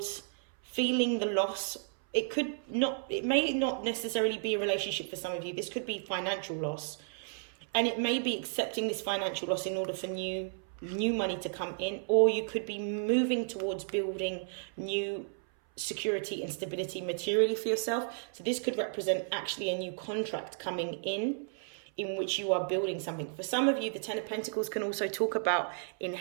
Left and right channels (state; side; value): silent; left; 56 dB below the other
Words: feeling the loss. It may not necessarily be a relationship for some of you. This could be financial loss. And it may be accepting this financial loss in order for new money to come in. Or you could be moving towards building new security and stability materially for yourself. So this could represent actually a new contract coming in which you are building something. For some of you, the Ten of Pentacles can also talk about